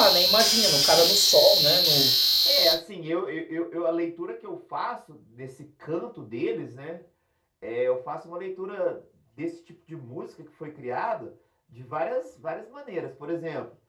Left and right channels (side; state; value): both; identical; correlation 1.00